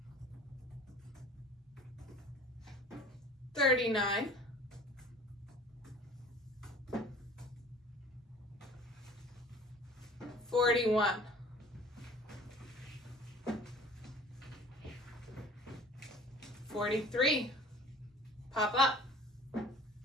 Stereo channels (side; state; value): both; normal; correlation 0.47